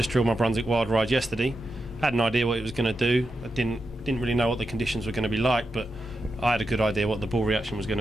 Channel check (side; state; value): both; normal; correlation 0.88